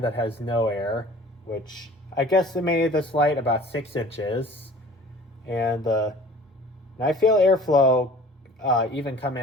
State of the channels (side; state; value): both; normal; correlation 0.46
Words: that has no air, which I guesstimated this light about 6 inches. And I feel airflow even coming